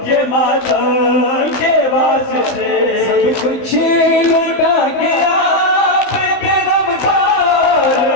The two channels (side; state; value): right; late; 15 ms